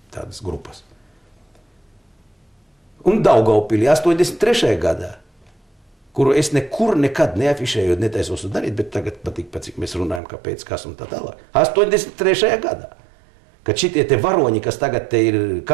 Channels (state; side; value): drops out; left; at 10.2 s